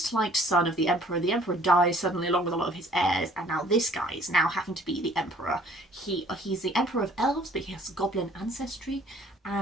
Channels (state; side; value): normal; both; correlation 0.56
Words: liked son of the Emperor. The Emperor dies suddenly along with a lot of his heirs, and now this guy is now having to be the Emperor. He's the Emperor of Elves, but he has Goblin ancestry.